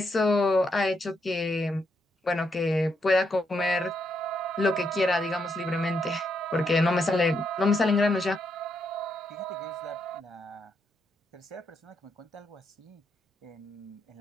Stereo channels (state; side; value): normal; both; correlation 0.79